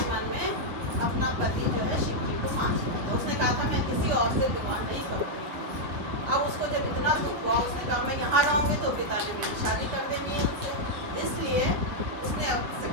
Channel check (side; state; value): left; late; 7.0 ms